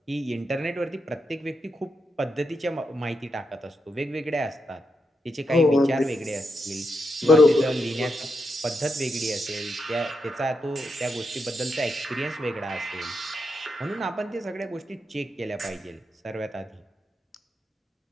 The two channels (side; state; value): both; normal; correlation 0.84